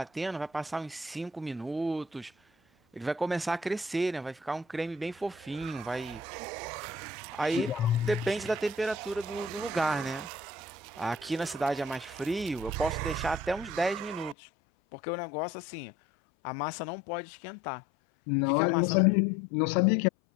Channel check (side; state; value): right; drops out; at 14.4 s